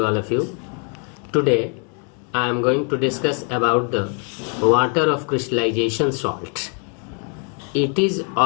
all of you. Today I am going to discuss about the water of crystallization salt. It is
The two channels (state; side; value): quieter; right; 39.6 dB